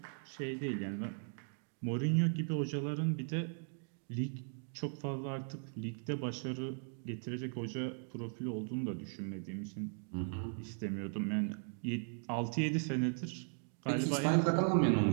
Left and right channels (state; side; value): silent; left; 53 dB below the other